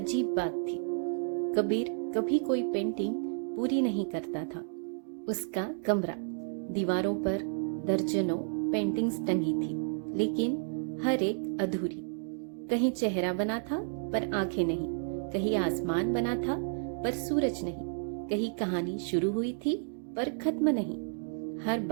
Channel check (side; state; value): left; silent; digital silence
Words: बात थी, कबीर कभी कोई पेंटिंग पूरी नहीं करता था। उसका कमरा, दीवारों पर दर्जनों पेंटिंग्स टंगी थी, लेकिन हर एक अधूरी। कहीं चेहरा बना था पर आंखें नहीं, कहीं आसमान बना था पर सूरज नहीं, कहीं कहानी शुरू हुई थी पर खत्म नहीं। हर